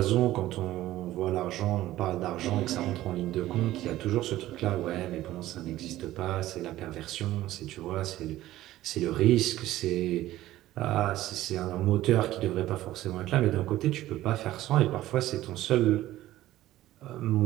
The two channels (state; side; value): quieter; left; 15.1 dB